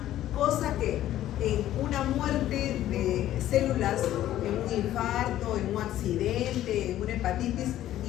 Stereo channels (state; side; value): quieter; right; 13.0 dB